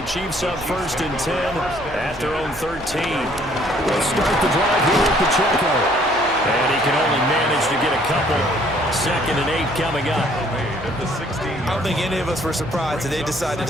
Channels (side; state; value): right; noise; hum, 17 dB below the sound